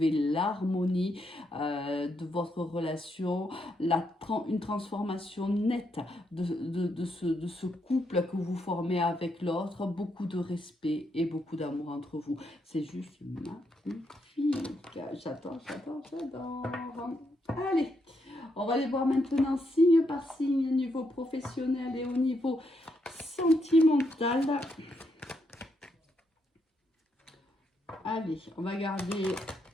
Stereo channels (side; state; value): both; normal; correlation 0.79